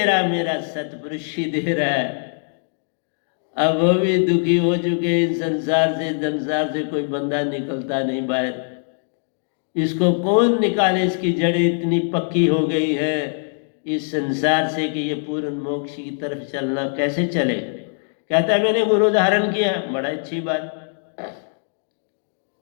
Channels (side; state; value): right; silent; digital silence